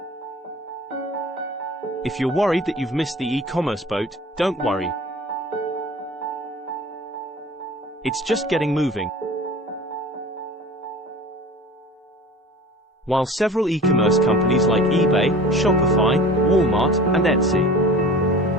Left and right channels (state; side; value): normal; both; correlation 0.40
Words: If you're worried that you've missed the e-commerce boat, don't worry. It's just getting moving. While several e-commerce companies like eBay, Shopify, Walmart, and Etsy